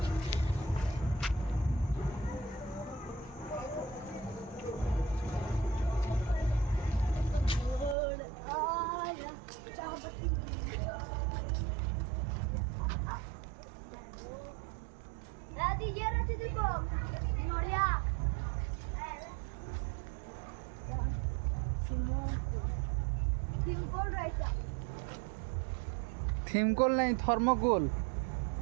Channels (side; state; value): left; drops out; at 8.0 s